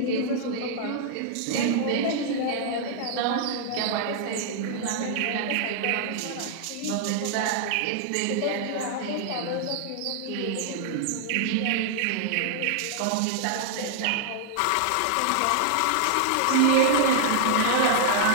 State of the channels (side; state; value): both; different; correlation -0.01